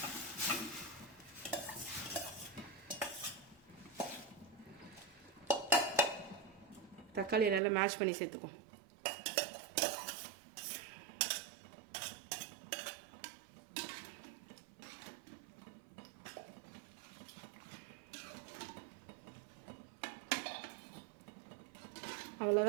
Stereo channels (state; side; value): drops out; left; at 7.6 s